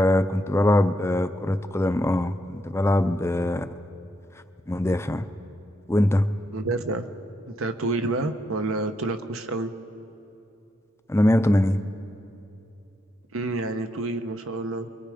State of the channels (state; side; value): normal; both; correlation 0.80